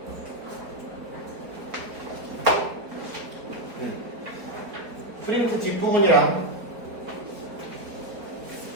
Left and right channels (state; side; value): late; left; 4.3 ms